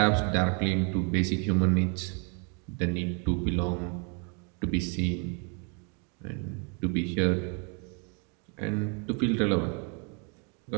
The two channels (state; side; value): quieter; left; 37.0 dB